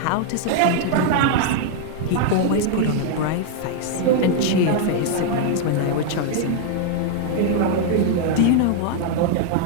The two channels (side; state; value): both; different; correlation 0.00